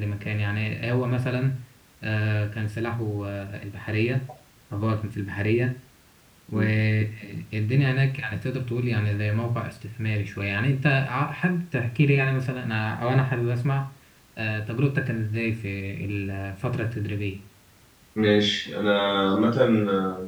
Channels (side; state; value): both; identical; correlation 1.00